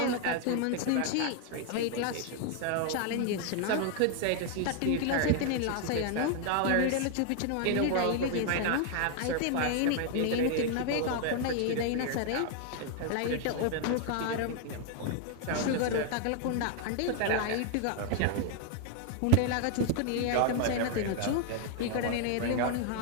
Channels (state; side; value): different; both; correlation 0.00